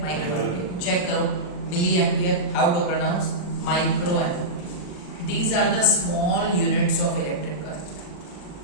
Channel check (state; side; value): late; right; 39 ms